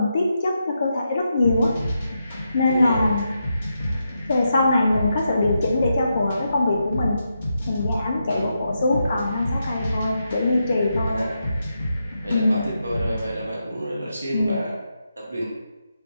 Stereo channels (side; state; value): both; inverted; correlation -0.85